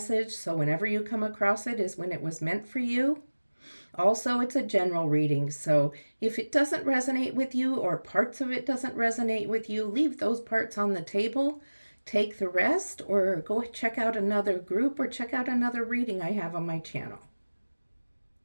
so whenever you come across it is when it was meant for you. Also, it's a general reading, so if it doesn't resonate with you or parts of it doesn't resonate with you, leave those parts on the table. Take the rest or go check out another group or check out another reading I have on my channel.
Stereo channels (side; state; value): both; inverted; correlation -1.00